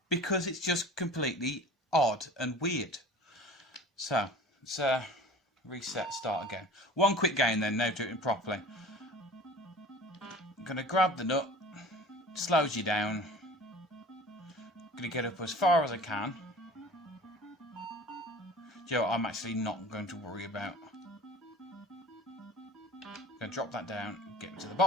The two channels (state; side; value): normal; both; correlation 0.41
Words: because it's just completely odd and weird. So, let's reset, start again. One quick game then, now do it properly. I'm going to grab the nut, slows you down. I'm going to get up as far as I can. You know what, I'm actually not going to worry about. I'm going to drop that down, get to the